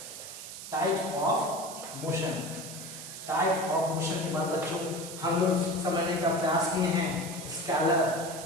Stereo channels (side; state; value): right; noise; hiss, 11 dB below the sound